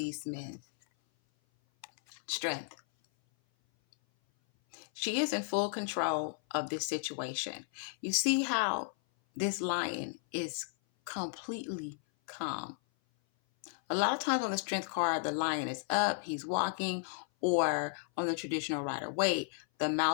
men? Strength. She is in full control of this situation. You see how this lion is completely calm. A lot of times on the strength card, the lion is up, he's walking, or on the traditional Rider-Waite, the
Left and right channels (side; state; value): right; silent; 55 dB below the other